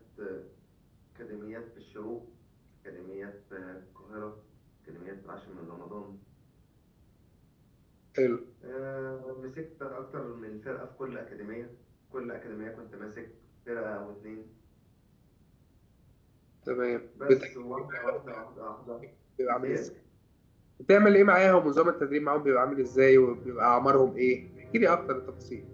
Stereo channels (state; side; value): identical; both; correlation 1.00